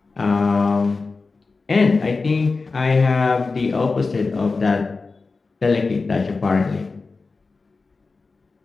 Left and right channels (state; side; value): quieter; right; 4.0 dB